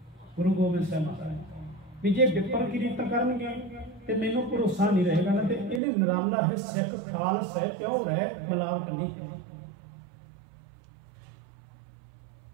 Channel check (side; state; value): left; drops out; at 5.8 s